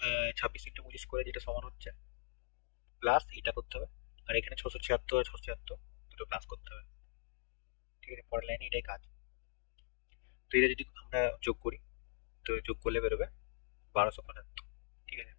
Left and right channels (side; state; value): right; silent; digital silence